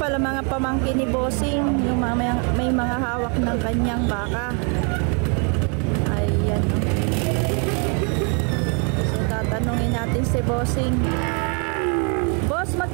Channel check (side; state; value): left; quieter; 37.0 dB